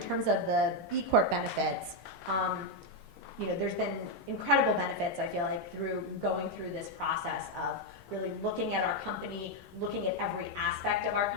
terms of the B Corp benefits, there's been incredible benefits, I feel like, through going through this process of really looking at our company, looking at every aspect of our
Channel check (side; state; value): both; normal; correlation 0.02